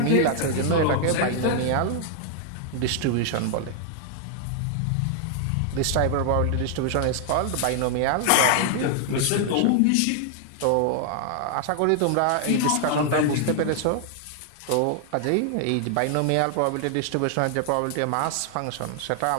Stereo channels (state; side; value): different; both; correlation 0.00